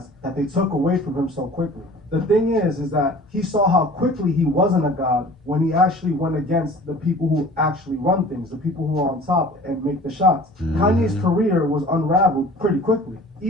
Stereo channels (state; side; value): normal; both; correlation 0.45